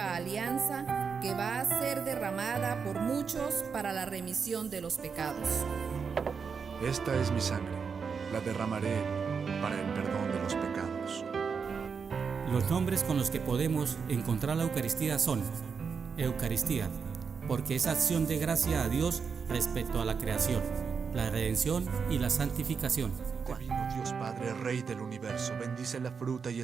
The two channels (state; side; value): quieter; left; 5.8 dB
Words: alianza que va a ser derramada por muchos para la remisión de los pecados. Esta es mi sangre, la derramaré para el perdón de los pecados. Los nombres con los que podemos encontrar la Eucaristía son: Eucaristía, porque es acción de gracia a Dios respecto a la creación, la redención y la santificación. Divino Dios Padre, Rey del universo, bendice la fruta y